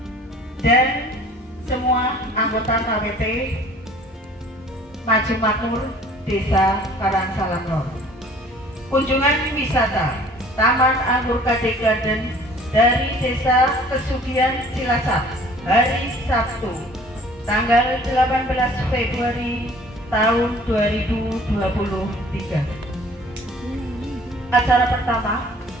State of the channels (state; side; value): normal; both; correlation 0.52